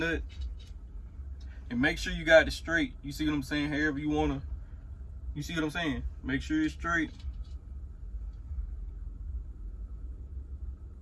and make sure you got it straight. You see what I'm saying? However you wanna, you see what I'm saying? Make sure it's straight.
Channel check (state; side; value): identical; both; correlation 1.00